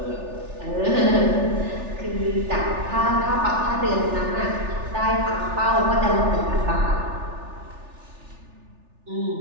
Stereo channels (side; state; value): left; late; 3.4 ms